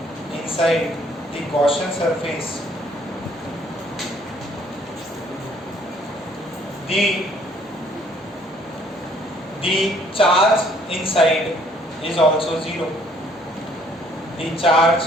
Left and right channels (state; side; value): normal; both; correlation 0.62